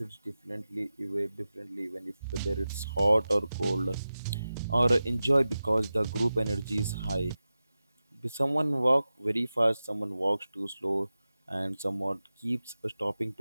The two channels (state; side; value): inverted; both; correlation -0.94